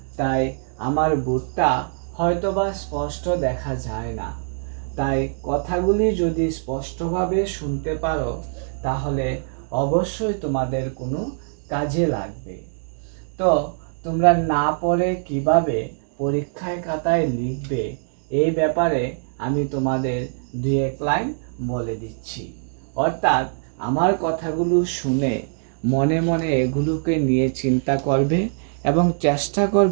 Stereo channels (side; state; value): left; silent; digital silence